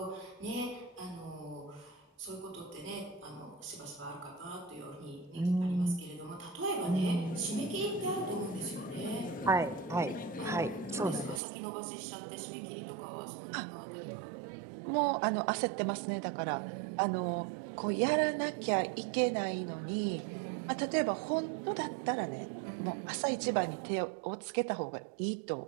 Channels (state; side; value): drops out; left; at 11.4 s